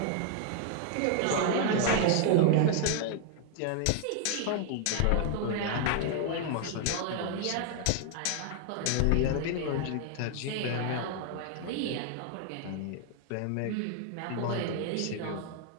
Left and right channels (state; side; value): different; both; correlation 0.00